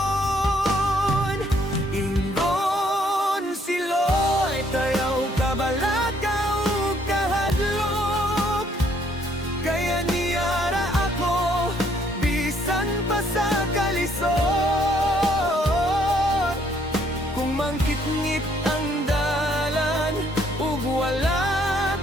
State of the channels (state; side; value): normal; both; correlation 0.67